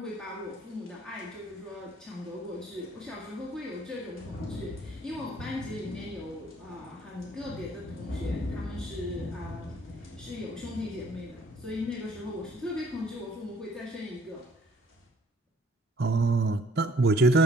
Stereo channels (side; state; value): both; normal; correlation 0.59